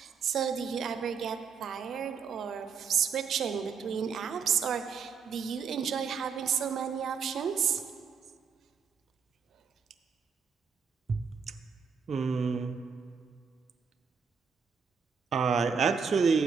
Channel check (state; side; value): quieter; left; 6.1 dB